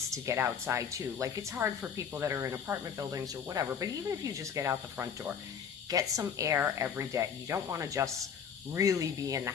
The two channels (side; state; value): right; quieter; 7.3 dB